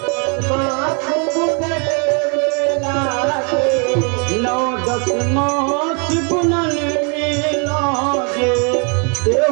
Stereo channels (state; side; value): quieter; left; 37.0 dB